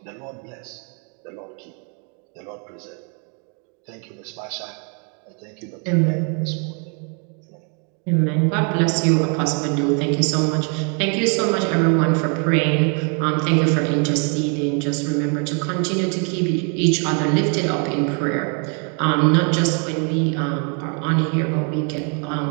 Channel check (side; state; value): left; quieter; 38.8 dB